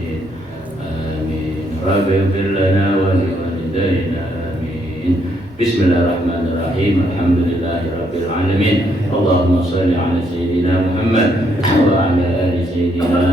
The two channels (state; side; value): normal; both; correlation 0.73